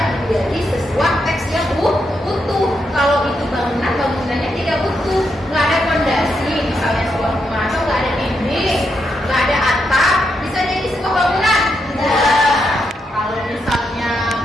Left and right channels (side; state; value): both; normal; correlation 0.82